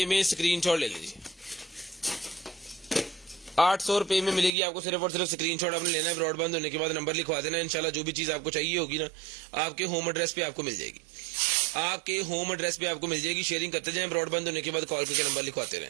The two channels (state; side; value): drops out; left; at 4.5 s